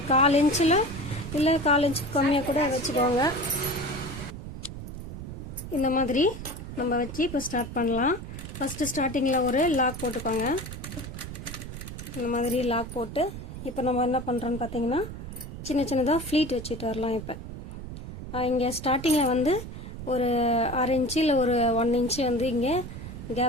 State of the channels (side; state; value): right; noise; rumble, 10 dB below the sound